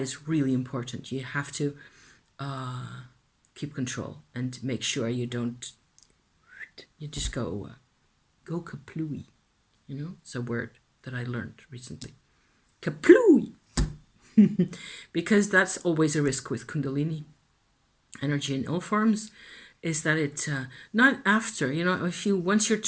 really important. You have to keep control and make sure you don't, you just go kaplooey. You know, it's a word that I learned recently. Kaplooey! Because that's always a risk with Kundalini energy in all forms, is that it, not after, you know, if you, once you're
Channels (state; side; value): identical; both; correlation 1.00